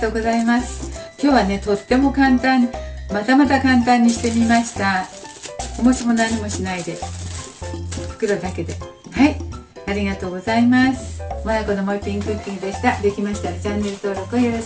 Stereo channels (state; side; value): identical; both; correlation 1.00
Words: うございます。今日はね、とっても簡単、また簡単にしてみました。おもしも何もしないで、袋だけで。はい、ありがとうございます。まやこのもう一品クッキングでした。できましたらチャンネル登録をよろ